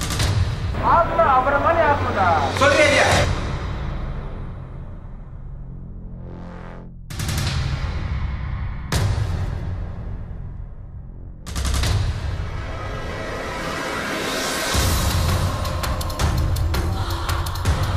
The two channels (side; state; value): both; identical; correlation 1.00